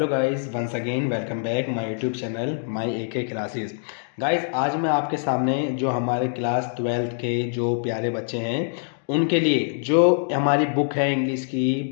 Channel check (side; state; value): right; silent; digital silence